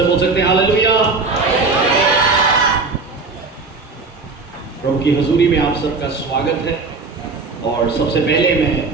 बोल सकते हैं हालेलुया। प्रभु की हजूरी में आप सबका स्वागत है। और सबसे पहले मैं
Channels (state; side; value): quieter; left; 4.1 dB